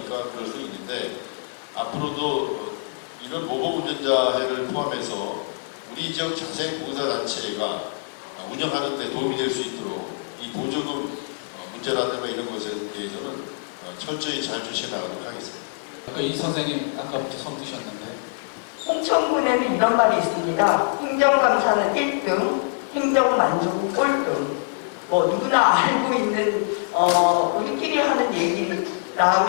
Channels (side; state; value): right; silent; 59 dB below the other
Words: 그럴 수 있는데 앞으로도 이런 모범 운전자회를 포함해서 우리 지역 자생봉사단체가 운영하는 데 도움이 될 수 있도록 이 보조금 문제라든가 이런 것에 대해서는 철저히 잘 주시해 나가도록 하겠습니다. 이 선생님 아까부터 손 드셨는데 홍천군에는 이런 말이 있습니다. 행정감사는 1등, 행정만족은 꼴등. 뭐 누구나 알고 있는 우리끼리 하는